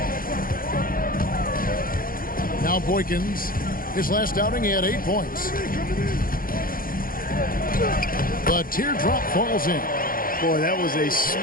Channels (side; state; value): right; late; 0.41 ms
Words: Now Boykins. His last outing, he had 8 points. The teardrop falls in. Boy, that was a